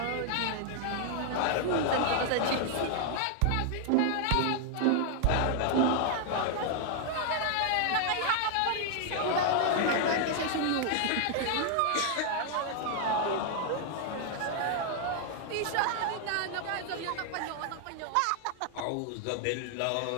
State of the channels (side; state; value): both; different; correlation 0.00